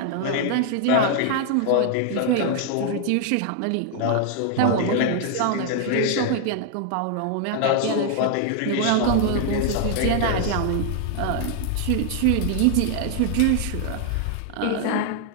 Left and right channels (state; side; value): different; both; correlation 0.00